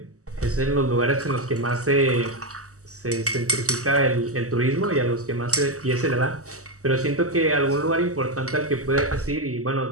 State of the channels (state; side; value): late; left; 0.66 ms